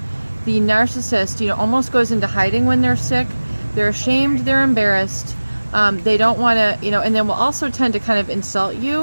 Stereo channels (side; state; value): both; inverted; correlation -1.00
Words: the narcissist, almost goes into hiding when they're sick. They're ashamed. They're embarrassed. They don't want to, and then will also tend to kind of insult